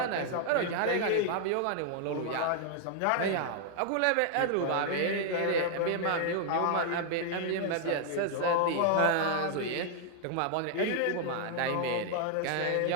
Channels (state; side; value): different; both; correlation 0.00